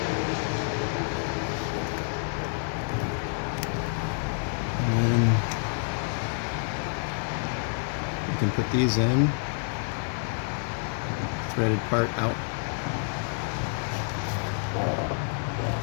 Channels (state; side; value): silent; right; 55 dB below the other